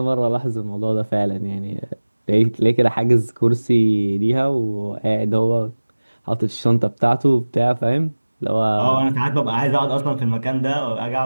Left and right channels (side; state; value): both; inverted; correlation -1.00